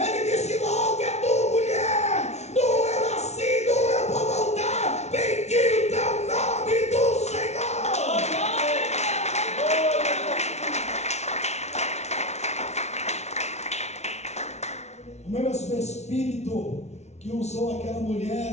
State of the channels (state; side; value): late; right; 0.32 ms